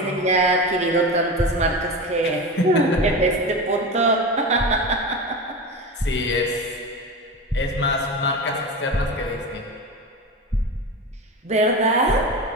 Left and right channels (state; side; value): normal; both; correlation 0.25